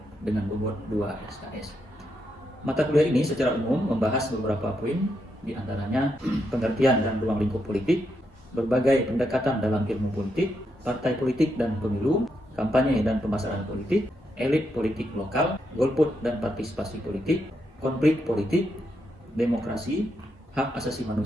dengan bobot 2 SKS. Mata kuliah ini secara umum membahas beberapa poin, di antaranya pengertian dan ruang lingkup politik, berbagai pendekatan dalam ilmu politik, partai politik dan pemilu, kampanye dan pemasaran politik, elit politik lokal, golput dan partisipasi politik, konflik politik, demokrasi, hak asasi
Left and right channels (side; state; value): both; normal; correlation 0.81